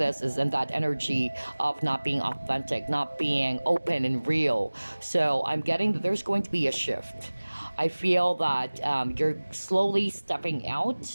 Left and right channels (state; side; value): inverted; both; correlation -1.00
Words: is in that energy of not being authentic, not being open and real. So I'm getting that there's going to be a shift. I feel that you're slowly stepping